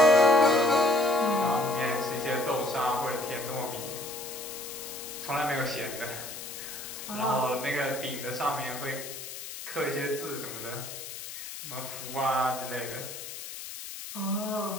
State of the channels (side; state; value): left; noise; hiss, 10 dB below the sound